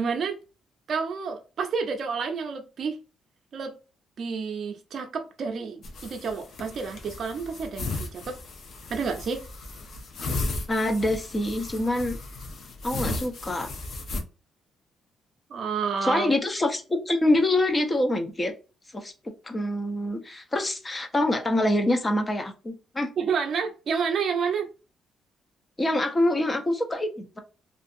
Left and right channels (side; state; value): both; normal; correlation 0.81